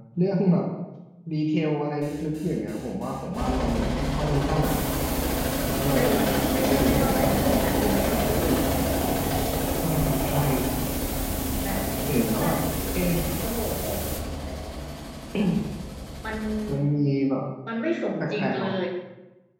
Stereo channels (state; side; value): identical; both; correlation 1.00